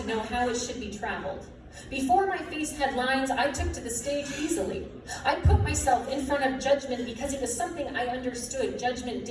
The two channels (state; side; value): identical; both; correlation 1.00